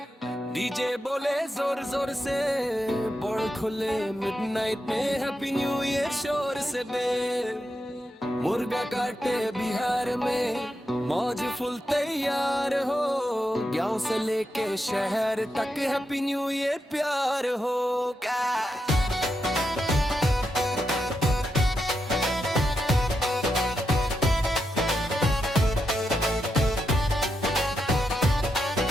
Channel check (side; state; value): both; normal; correlation 0.85